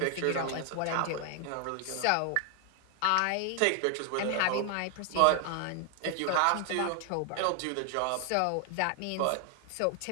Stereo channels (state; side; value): different; both; correlation 0.00